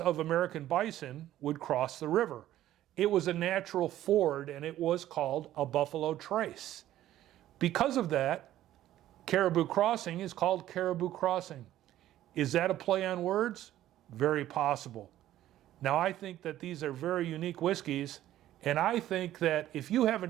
American bison would cross the river. It was a natural ford, and it was called a Buffalo Trace. Because of that, Caribou Crossing is called Caribou Crossing. Is that a play on words? Very possible. Now, I think that these are very unique whiskeys, and I think that if you haven't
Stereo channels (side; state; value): left; quieter; 13.3 dB